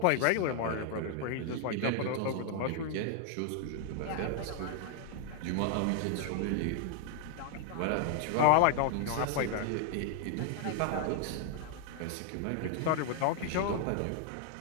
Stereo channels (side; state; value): both; different; correlation 0.00